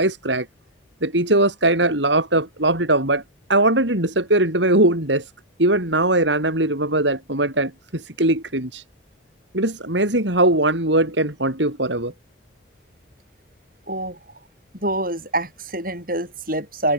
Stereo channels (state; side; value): normal; both; correlation -0.13